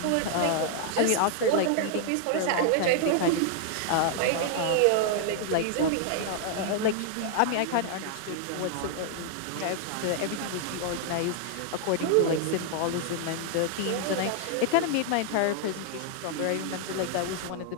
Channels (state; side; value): different; both; correlation 0.00